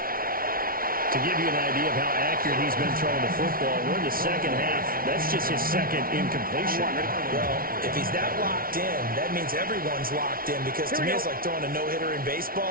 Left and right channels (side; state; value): left; late; 0.43 ms